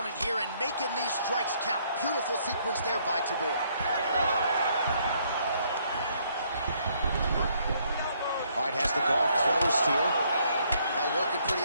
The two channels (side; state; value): both; inverted; correlation -0.69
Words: here and making these strikes count. Beautiful sequence there by Tabor. All right, has the guard closed here. Well, working pretty